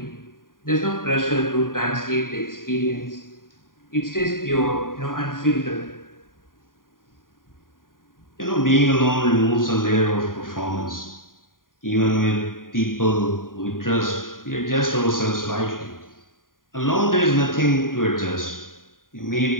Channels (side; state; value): right; late; 0.90 ms